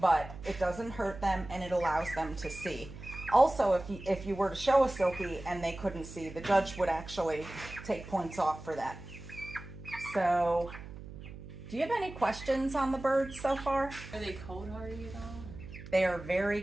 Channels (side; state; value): right; noise; hum, 13 dB below the sound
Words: it doesn't hurt them and it allows them to see. Also, if you were to show a silky and they couldn't see, the judge would actually take points off for that. So, do you have any questions on the birds so far? Are they cold hardy at all? They are very